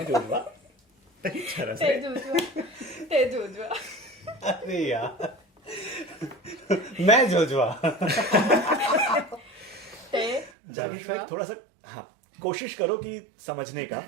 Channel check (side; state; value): left; drops out; at 10.5 s